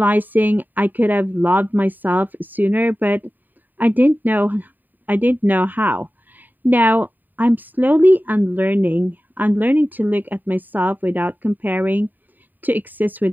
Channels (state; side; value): late; left; 0.088 ms